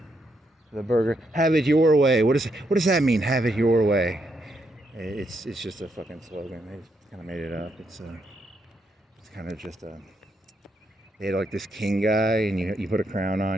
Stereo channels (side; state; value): both; normal; correlation 0.78